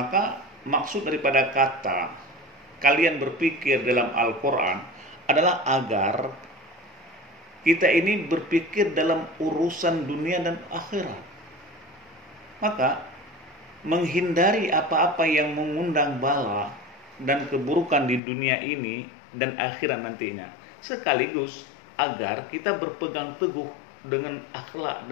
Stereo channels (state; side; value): drops out; right; at 18.2 s